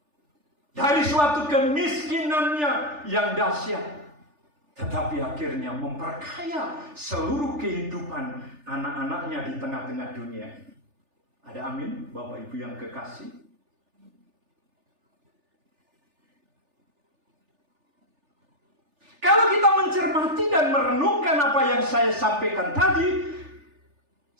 Dari suatu kemiskinannya yang dahsyat. Tetapi akhirnya memperkaya seluruh kehidupan anak-anaknya di tengah-tengah dunia ini. Ada amin, Bapak Ibu yang kekasih? Kalau kita mencermati dan merenungkan apa yang saya sampaikan tadi,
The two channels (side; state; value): left; late; 3.4 ms